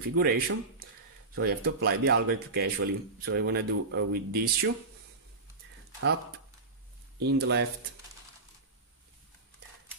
So I have to apply the algorithm casually. So I want to do with these two, up in the left,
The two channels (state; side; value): quieter; left; 3.5 dB